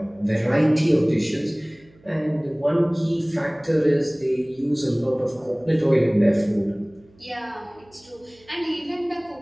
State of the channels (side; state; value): right; noise; hum, 29 dB below the sound